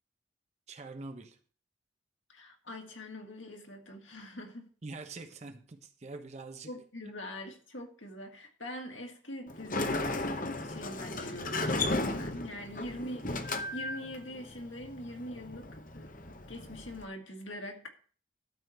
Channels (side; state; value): both; normal; correlation 0.31